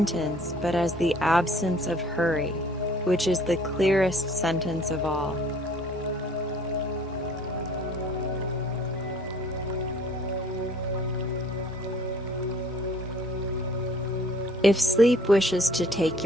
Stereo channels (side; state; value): both; normal; correlation 0.55